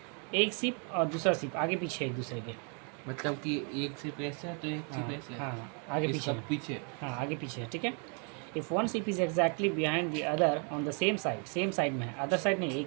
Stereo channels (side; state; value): left; quieter; 38.9 dB